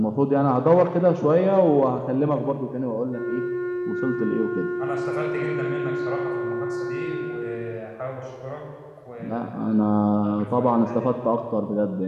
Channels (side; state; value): both; identical; correlation 1.00